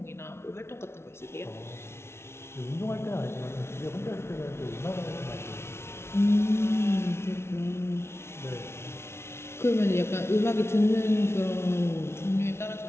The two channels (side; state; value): right; late; 0.12 ms